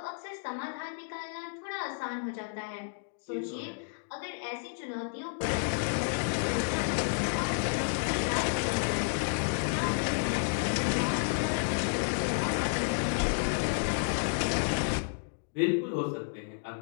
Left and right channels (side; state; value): right; silent; digital silence